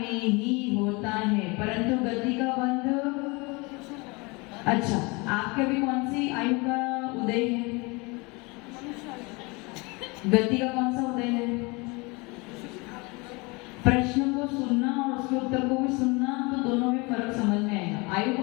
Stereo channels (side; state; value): right; quieter; 27.1 dB